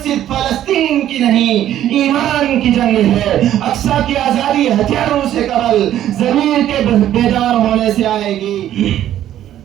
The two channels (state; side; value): quieter; left; 11.9 dB